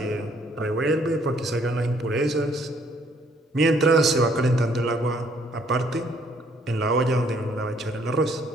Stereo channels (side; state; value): both; normal; correlation 0.64